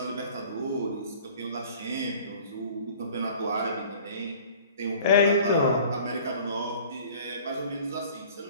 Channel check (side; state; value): both; inverted; correlation -0.48